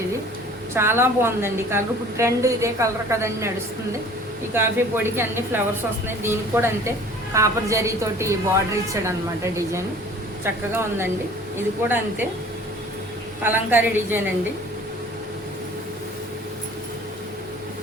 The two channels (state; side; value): normal; both; correlation 0.48